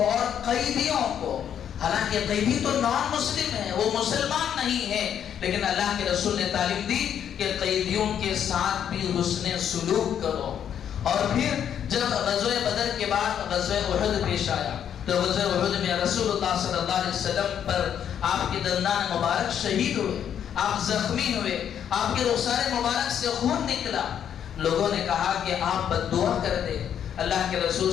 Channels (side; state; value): right; quieter; 9.1 dB